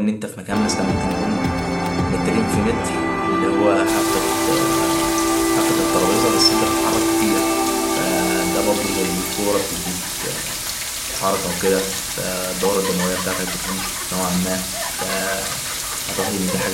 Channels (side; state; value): both; identical; correlation 1.00